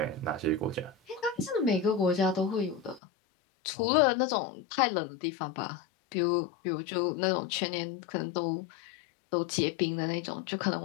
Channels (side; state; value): right; drops out; at 3.0 s